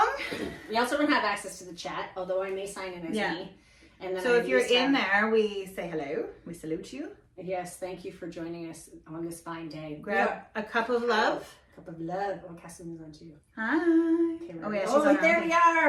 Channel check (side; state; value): both; identical; correlation 1.00